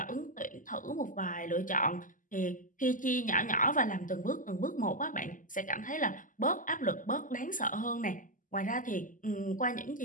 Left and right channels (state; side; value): late; right; 0.38 ms